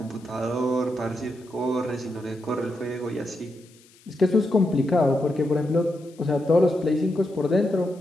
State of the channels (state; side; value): noise; left; hiss, 28 dB below the sound